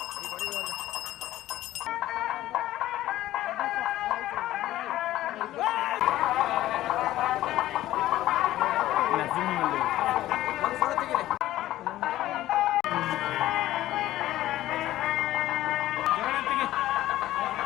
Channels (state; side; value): quieter; right; 14.7 dB